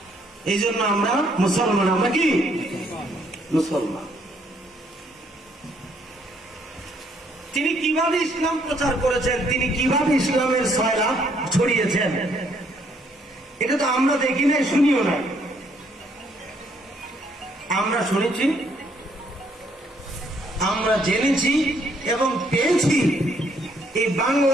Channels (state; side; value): normal; both; correlation 0.68